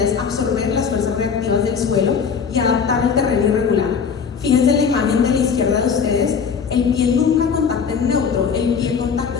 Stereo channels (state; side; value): quieter; right; 6.3 dB